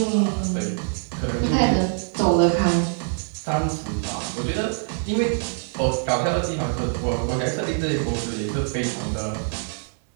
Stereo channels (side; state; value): left; silent; 58 dB below the other